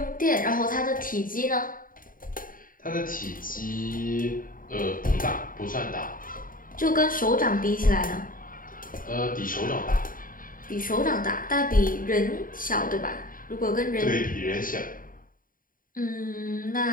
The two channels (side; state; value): right; late; 0.40 ms